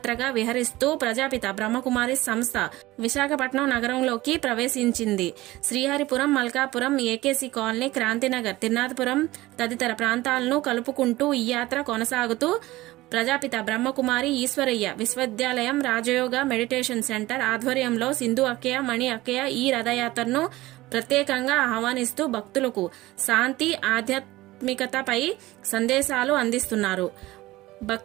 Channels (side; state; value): left; quieter; 18.3 dB